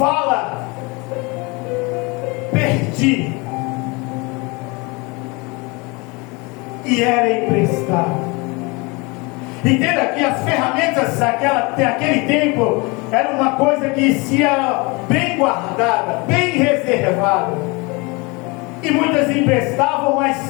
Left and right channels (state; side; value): quieter; right; 27.2 dB